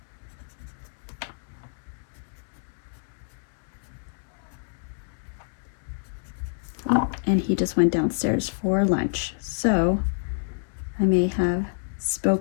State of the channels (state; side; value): silent; right; digital silence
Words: Oh, and he just went downstairs for lunch, so I may have